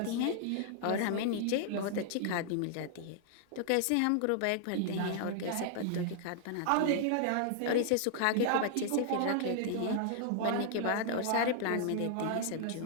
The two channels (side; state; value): both; different; correlation -0.01